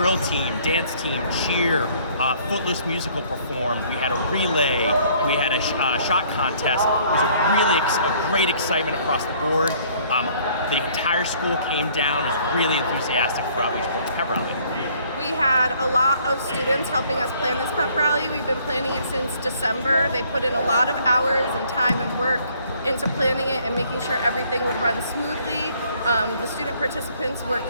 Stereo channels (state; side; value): inverted; both; correlation -0.60